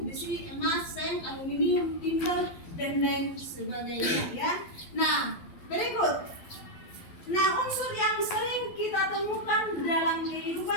besi, emas, seng, aluminium, timbal dan lain sebagainya ya. Nah, berikut. Nah, unsur yang sering kita temukan dalam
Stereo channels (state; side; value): late; right; 12 ms